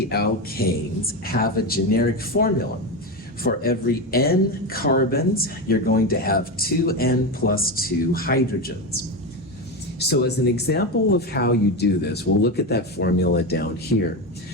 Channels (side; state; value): both; normal; correlation 0.16